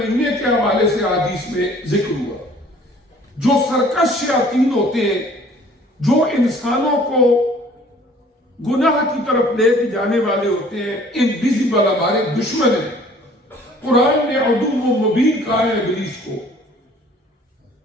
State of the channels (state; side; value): normal; both; correlation 0.54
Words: کے حوالے سے حدیث میں ذکر ہوا، جو سرکش شیاطین ہوتے ہیں، جو انسانوں کو گناہ کی طرف لے کے جانے والے ہوتے ہیں، انویزیبل ہمارے دشمن ہیں۔ قرآن نے عدو مبین کہا ہے ابلیس کو،